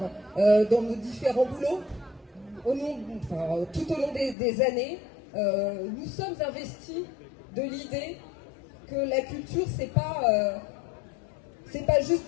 dans nos différents boulots tout au long des années. Nous sommes investis de l'idée que la culture, c'est pas juste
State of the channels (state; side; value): drops out; right; at 4.4 s